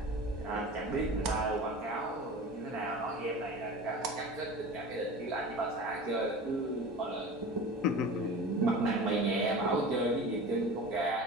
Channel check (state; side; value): normal; both; correlation 0.35